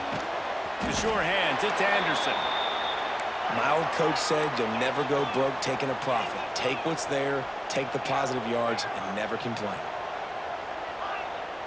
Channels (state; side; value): identical; both; correlation 1.00